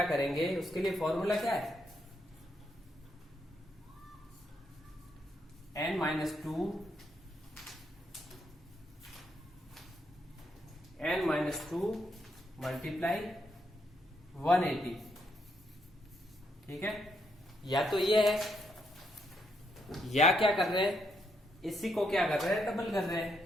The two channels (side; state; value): both; normal; correlation 0.77